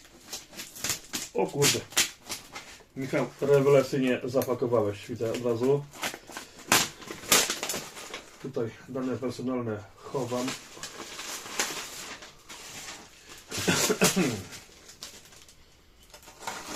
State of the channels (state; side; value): identical; both; correlation 1.00